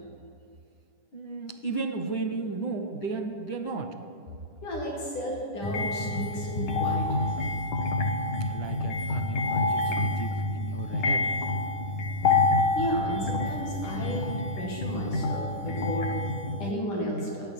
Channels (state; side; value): late; right; 10 ms